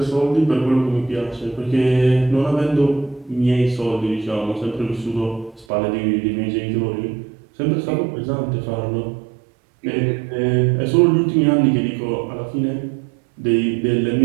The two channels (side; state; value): left; drops out; at 5.7 s